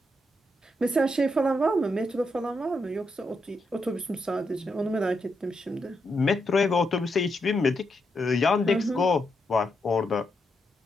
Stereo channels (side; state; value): both; normal; correlation 0.82